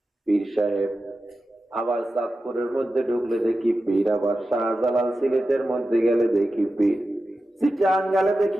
পীর সাহেব। আবার চাঁদপুরের মধ্যে ঢুকলে দেখি পীর, আবার শাহজালাল সিলেটের মধ্যে গেলে দেখি পীর, চিটাং গেলে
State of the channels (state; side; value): normal; both; correlation 0.92